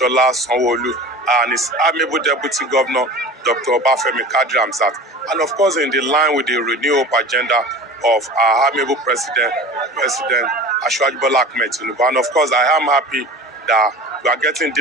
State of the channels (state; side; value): normal; both; correlation 0.37